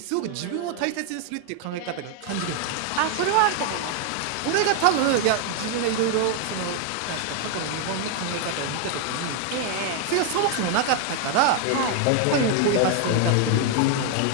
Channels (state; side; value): different; both; correlation 0.00